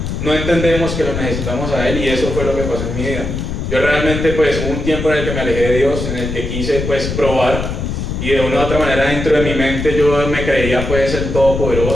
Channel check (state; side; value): noise; left; rumble, 4 dB below the sound